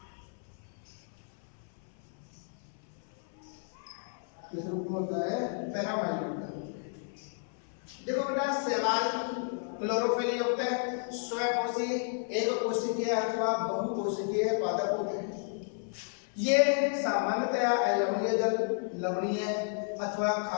किस रूप में होता है? पैरामाइलोन के रूप में। देखो बेटा, शैवाल क्लोरोफिल युक्त है, स्वकोशी, एक कोशिकीय अथवा बहुकोशिकीय पादप होते हैं। ये सामान्यतया अलवणीय जल, लवणीय अथवा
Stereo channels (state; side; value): silent; right; 56 dB below the other